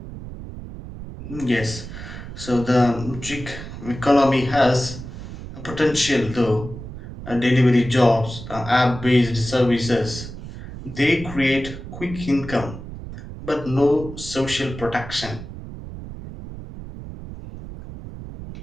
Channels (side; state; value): right; noise; rumble, 11 dB below the sound